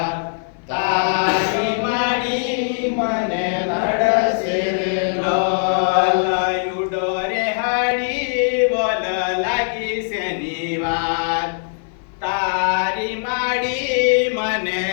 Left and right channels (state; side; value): silent; right; 57 dB below the other